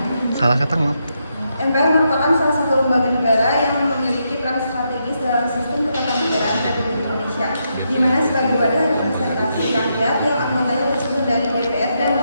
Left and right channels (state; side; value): inverted; both; correlation -0.81